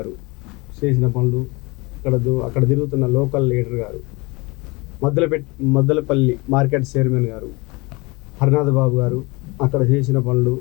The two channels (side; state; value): right; quieter; 25.4 dB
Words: చేసిన పనులు, అక్కడ తిరుగుతున్న లోకల్ లీడర్ గారు, మద్దలపల్లి మార్కెట్ చైర్మన్ గారు, హరినాథ్ బాబు గారు అక్కడ చేసిన పనులు